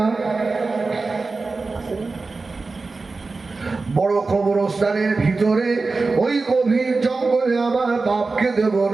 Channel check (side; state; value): left; quieter; 3.9 dB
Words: বড় কবরস্থানের ভিতরে ওই গভীর জঙ্গলে আমার বাপকে দেব